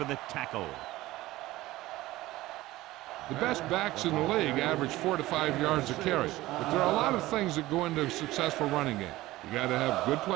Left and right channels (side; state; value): left; quieter; 17.5 dB